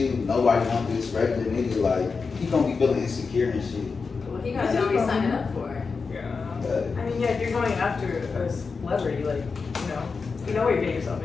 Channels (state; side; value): quieter; right; 4.8 dB